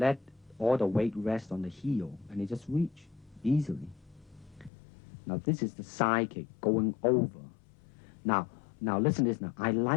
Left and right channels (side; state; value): right; drops out; at 4.7 s